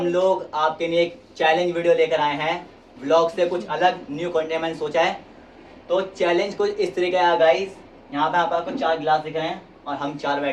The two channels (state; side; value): identical; both; correlation 1.00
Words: लोग आपके लिए एक चैलेंज वीडियो लेकर आए हैं। व्लॉग से कुछ अलग न्यू कंटेंट मैंने सोचा है। तो चैलेंज कुछ इस तरीके का है गाइस। यहाँ पे आपको 4 गिलास दिख रहे हैं और हम 4